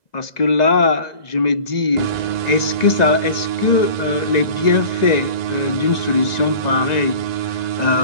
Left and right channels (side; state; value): right; late; 1.9 ms